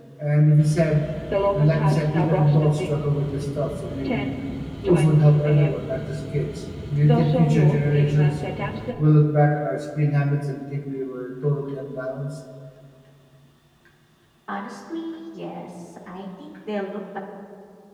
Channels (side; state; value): both; identical; correlation 1.00